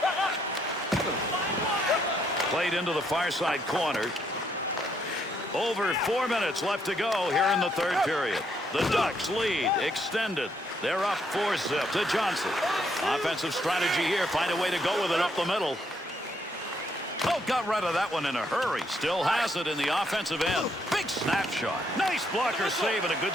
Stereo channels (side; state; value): both; normal; correlation 0.73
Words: Played into the far side corner. Over 4 minutes left to go here in the 3rd period. The Ducks lead extended. They're up 4-zip to Johnson. Offensive strategy here. Find a way to go with it up the middle. Oh, got rid of that one in a hurry. Still has it in the offensive end. Big snapshot. Nice blocker save and a good